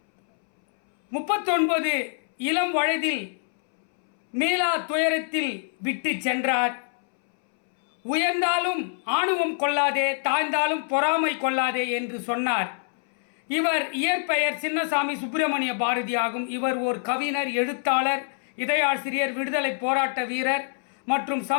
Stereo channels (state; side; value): silent; right; 61 dB below the other